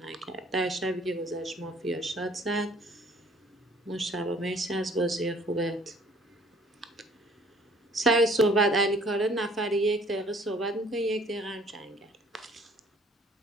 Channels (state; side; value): normal; both; correlation 0.56